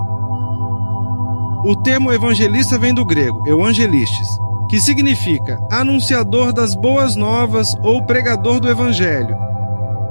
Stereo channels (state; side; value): inverted; both; correlation -1.00